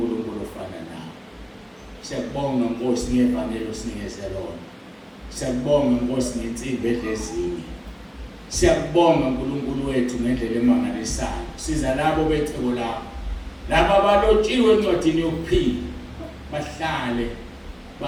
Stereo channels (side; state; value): both; identical; correlation 1.00